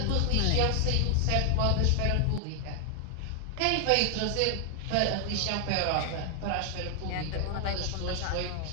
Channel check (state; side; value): different; both; correlation 0.00